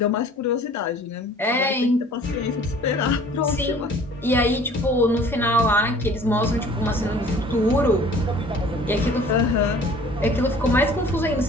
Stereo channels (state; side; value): normal; both; correlation 0.50